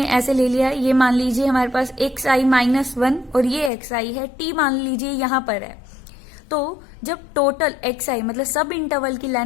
ऐसे ले लिया, ये मान लीजिए हमारे पास एक्स आई -1 और ये एक्स आई है, टी मान लीजिए यहां पर है। तो जब टोटल एक्स आई मतलब सब इंटरवल की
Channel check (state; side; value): drops out; right; at 3.7 s